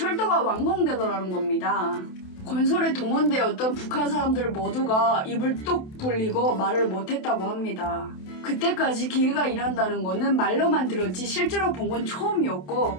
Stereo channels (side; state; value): right; late; 27 ms